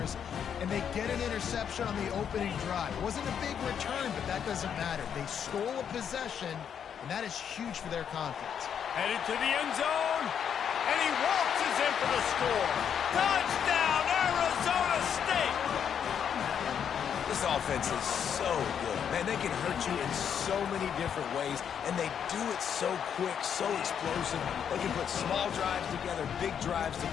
and they get an interception on the opening drive. It wasn't a big return, but that doesn't matter. They stole a possession, and that is huge for their confidence. Headed to the end zone. And he waltzes in for the score. Touchdown, Arizona State! This offense is so good. Man, they can hurt you in so many different ways, and they do it so quick, so explosive. They can put small drives together, big drives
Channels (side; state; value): right; quieter; 8.1 dB